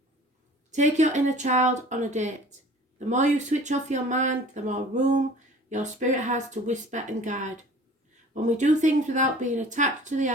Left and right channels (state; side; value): normal; both; correlation 0.46